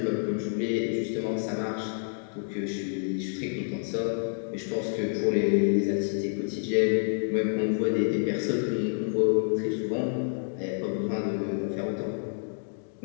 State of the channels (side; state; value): right; silent; digital silence